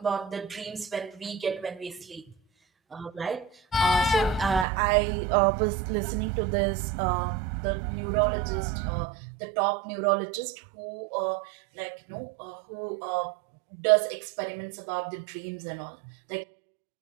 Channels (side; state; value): left; drops out; at 4.7 s